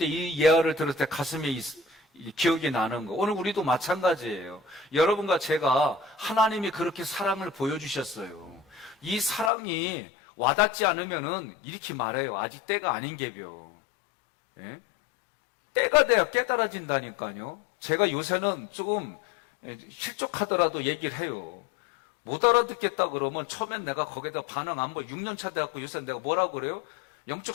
이 예화를 들을 때 가슴에 기억이 나는 거. 오늘 우리도 마찬가지예요. 여러분과 제가 하나님이 그렇게 사랑을 보여주셨어요. 이 사랑이 와닿지 않으면은 이렇게 말해요. 아직 때가 아닌 게벼. 예? 때가 돼야 깨달아진다니까요. 제가 요새는 조금 실족하더라도 얘기를 해요. 못 알아듣겠다 그러면 처음엔 내가 거기다 반응 안 보여. 6년 차 돼갖고 요새 내가 뭐라고 그래요?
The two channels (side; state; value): right; drops out; at 9.5 s